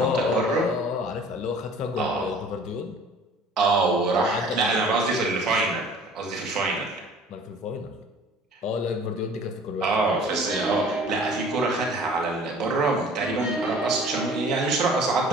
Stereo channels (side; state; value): both; normal; correlation 0.49